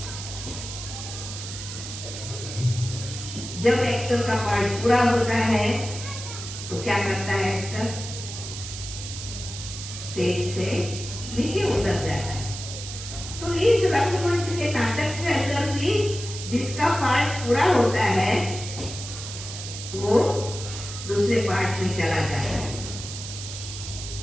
जब एक्टर का पार्ट पूरा होता है तो क्या करता है एक्टर? स्टेज से नीचे उतर जाता है। तो इस रंगमंच के नाटक के अंदर भी जिसका पार्ट पूरा होता है वो दूसरे पार्ट में चला जाता है।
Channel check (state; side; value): noise; right; hiss, 9 dB below the sound